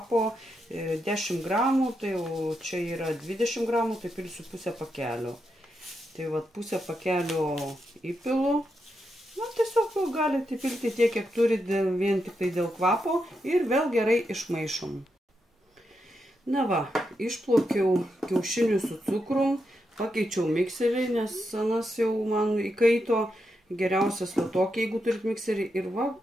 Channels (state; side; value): normal; both; correlation 0.84